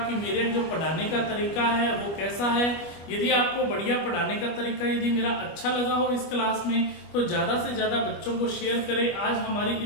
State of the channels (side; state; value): right; late; 25 ms